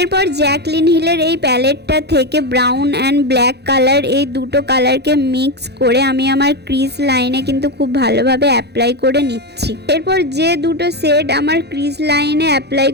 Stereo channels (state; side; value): late; left; 0.48 ms